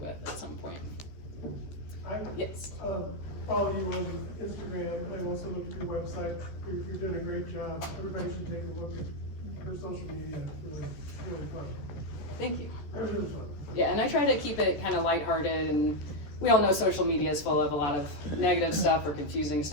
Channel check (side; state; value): right; late; 14 ms